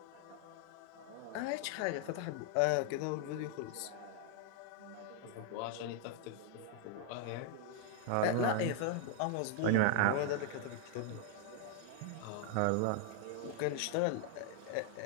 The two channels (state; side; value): different; both; correlation 0.00